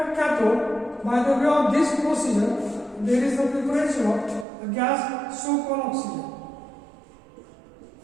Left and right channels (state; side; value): drops out; left; at 4.5 s